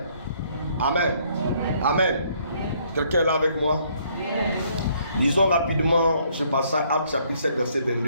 Amen. Amen. Quelqu'un est là avec moi? Lisons rapidement ce passage, Actes chapitre 7, verset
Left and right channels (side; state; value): both; inverted; correlation -0.66